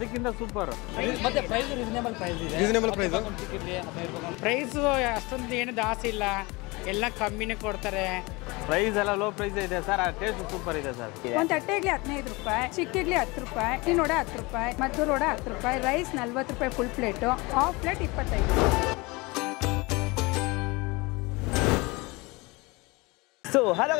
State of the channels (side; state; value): right; quieter; 24.6 dB